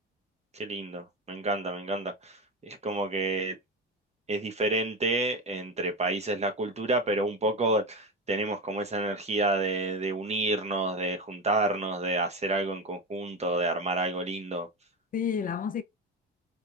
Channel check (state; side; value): normal; both; correlation 0.20